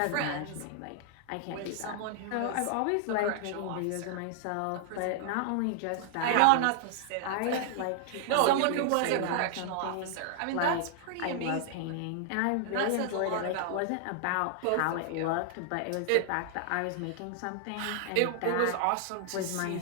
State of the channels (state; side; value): different; both; correlation 0.00